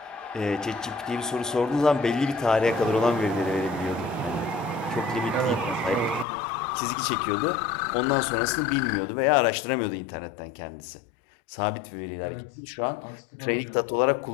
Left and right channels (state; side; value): drops out; right; at 6.2 s